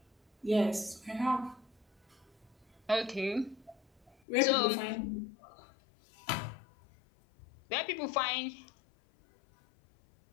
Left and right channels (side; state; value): right; drops out; at 4.2 s